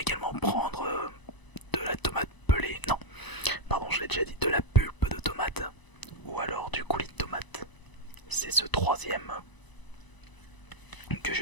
prendre de la tomate pelée, non, pardon, je l'ai déjà dit, de la pulpe de tomate ou alors du coulis de tomate. C'est ce troisième que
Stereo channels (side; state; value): right; late; 1.0 ms